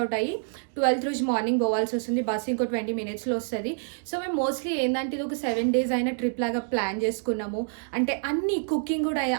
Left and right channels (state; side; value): silent; left; digital silence